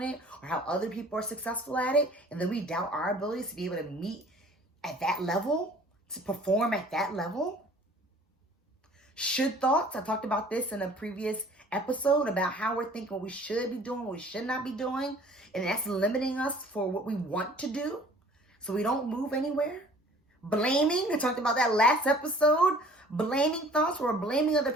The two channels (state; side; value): normal; both; correlation 0.51